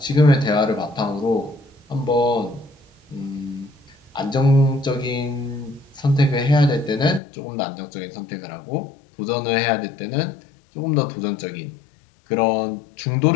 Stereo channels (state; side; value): drops out; right; at 7.2 s